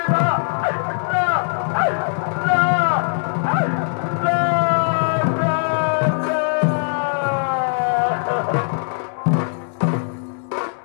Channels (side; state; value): right; silent; 60 dB below the other